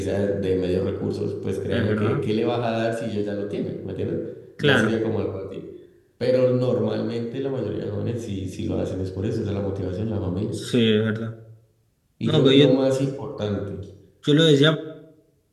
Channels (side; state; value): both; identical; correlation 1.00